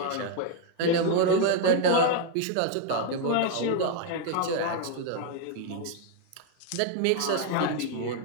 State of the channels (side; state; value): both; different; correlation 0.01